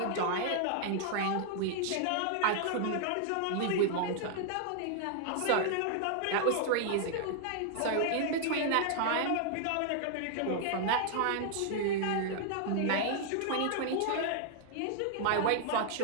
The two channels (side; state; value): both; different; correlation 0.00